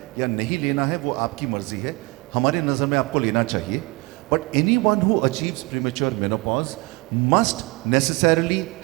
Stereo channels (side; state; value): left; quieter; 25.3 dB